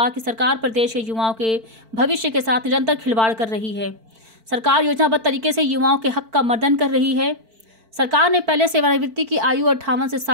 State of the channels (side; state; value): left; late; 4.5 ms